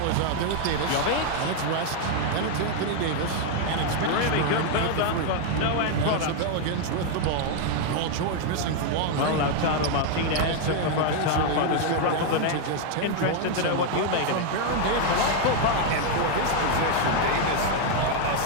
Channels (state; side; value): different; both; correlation 0.01